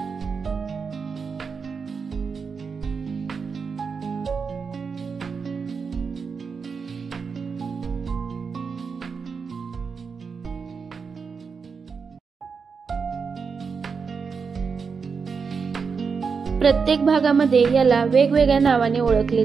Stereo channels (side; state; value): left; quieter; 5.5 dB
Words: प्रत्येक भागामध्ये याला वेगवेगळ्या नावाने ओळखले